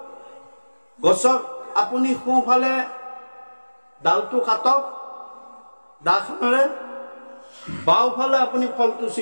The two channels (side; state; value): both; inverted; correlation -1.00